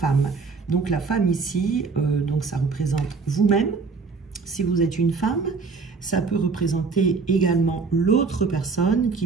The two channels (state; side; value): quieter; left; 4.6 dB